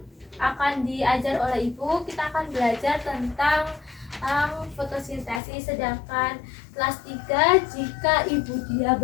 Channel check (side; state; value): right; drops out; at 5.4 s